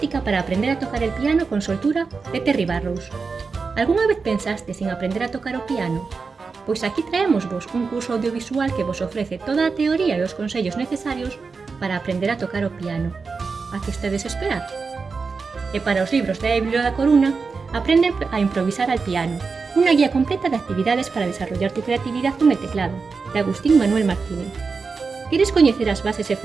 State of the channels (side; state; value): left; quieter; 4.7 dB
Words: para aprender a tocar el piano con soltura, de Terry Barrows. Algúna vez pensastes en aprender a tocar o piano? Pois aquí traémosvos un curso audiovisual que vos ofrece toda a teoría e os consellos necesarios para aprender a tocar o piano. A que estedes esperar? E para os libros da Biblio da Coruna, Aprende a improvisar al piano, unha guía completa de actividades para desarrollar tu creatividad con el teclado, de Agustín Manuel Martínez. Queres coñecer as bases e